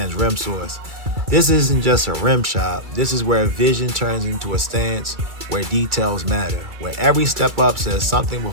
Rim Source. This isn't just a rim shop, this is where vision turns into a stance, where details matter, where every step up says something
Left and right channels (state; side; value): late; left; 2.3 ms